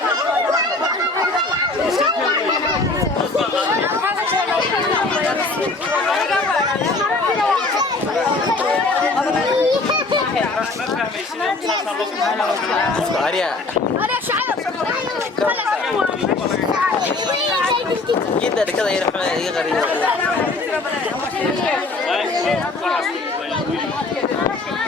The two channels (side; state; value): right; quieter; 3.4 dB